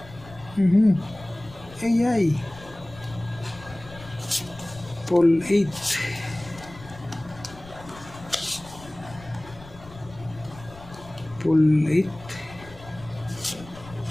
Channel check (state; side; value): noise; left; rumble, 18 dB below the sound